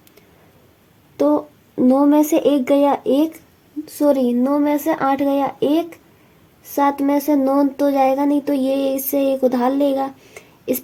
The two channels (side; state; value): both; identical; correlation 1.00